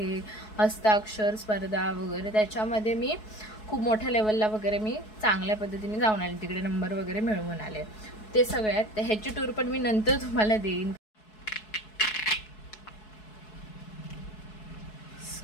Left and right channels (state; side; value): late; right; 4.7 ms